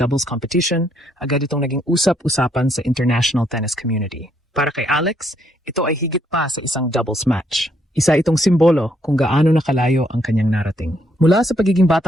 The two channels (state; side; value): normal; both; correlation 0.72